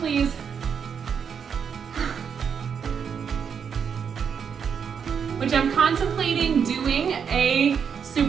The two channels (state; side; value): quieter; left; 7.0 dB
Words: Which I'm contemplating doing a